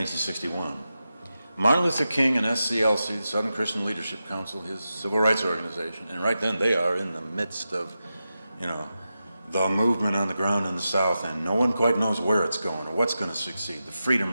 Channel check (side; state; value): both; inverted; correlation -0.91